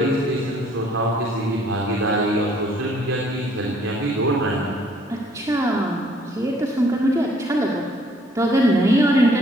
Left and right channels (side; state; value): both; normal; correlation 0.62